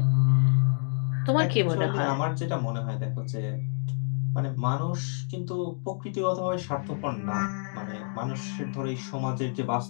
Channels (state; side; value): silent; right; 60 dB below the other